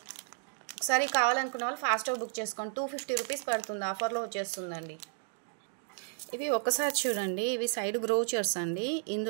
ఒకసారి కావాలనుకున్న వాళ్ళు ఫాస్ట్గా బుక్ చేసుకోండి. 250 రూపీస్ పడుతుంది, ఆఫర్లో వచ్చేస్తుందండి. ఇవి ఒకసారి చూడండి. ఇవి సైడ్ బ్రోచర్స్ అండి.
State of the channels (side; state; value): left; silent; 56 dB below the other